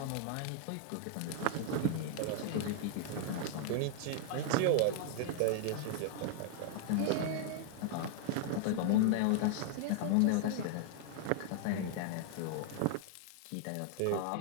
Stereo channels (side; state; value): both; different; correlation -0.01